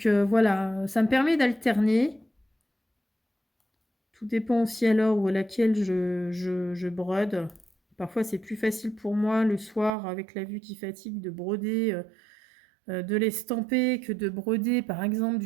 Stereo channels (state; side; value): drops out; left; at 9.9 s